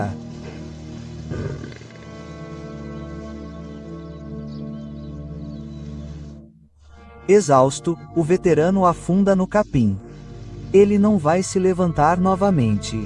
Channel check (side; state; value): both; identical; correlation 1.00